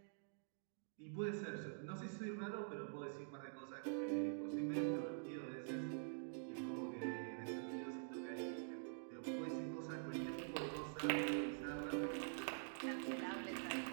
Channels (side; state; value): left; silent; digital silence